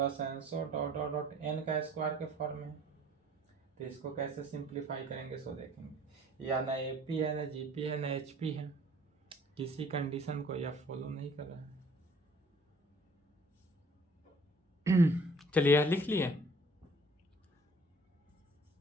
ENSO dot dot dot n का स्क्वायर के फॉर्म में। तो इसको कैसे सिंप्लीफाई करेंगे सो देखेंगे, या ना AP है ना GP है ना HP है, किसी कंडीशन को यह फॉलो नहीं कर रहा है। चलिए यह लिख लिए,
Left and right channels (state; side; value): normal; both; correlation 0.54